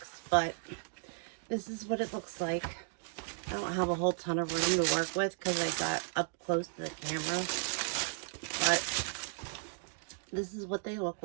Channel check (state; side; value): silent; left; digital silence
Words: but this is what it looks like. I don't have a whole ton of room to work with because I got up close to the camera, but this is what they look